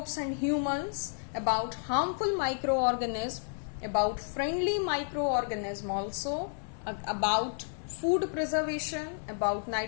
and humans, about harmful microorganism, about friendly microorganism also, about food preservation, about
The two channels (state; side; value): silent; right; 57 dB below the other